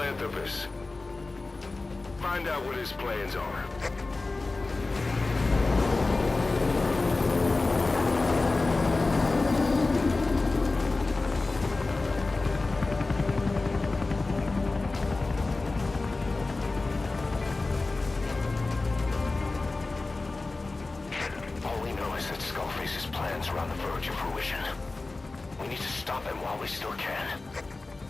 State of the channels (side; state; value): right; quieter; 3.4 dB